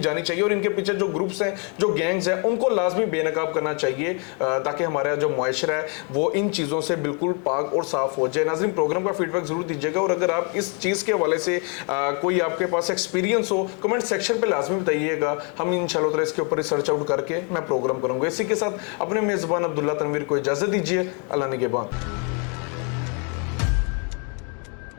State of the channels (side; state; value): right; quieter; 36.8 dB